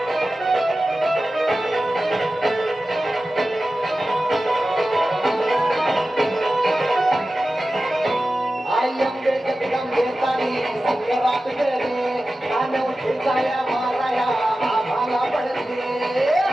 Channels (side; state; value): both; normal; correlation 0.94